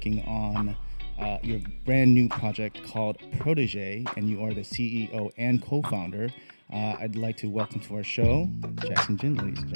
on your brand new project called Protégé, and you are the CEO and co-founder. I'd like to welcome to our show, Jackson Jhin, ladies and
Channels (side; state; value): both; inverted; correlation -1.00